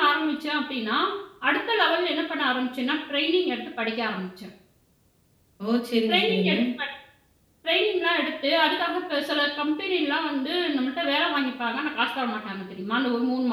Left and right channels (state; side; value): identical; both; correlation 1.00